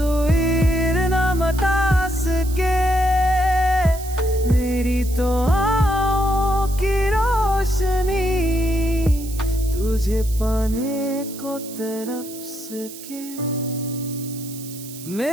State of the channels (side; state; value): right; noise; hiss, 14 dB below the sound